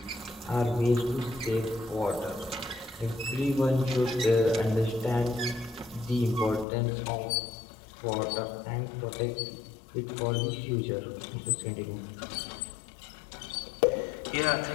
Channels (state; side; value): drops out; right; at 6.7 s